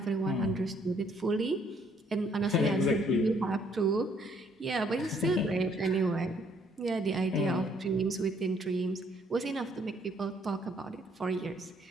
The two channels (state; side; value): normal; both; correlation 0.66